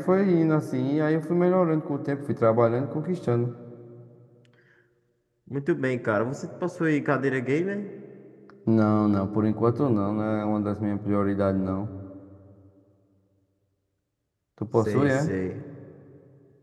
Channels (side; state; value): both; identical; correlation 1.00